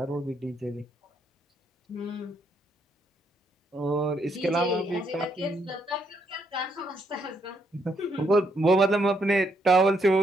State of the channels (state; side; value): normal; both; correlation 0.75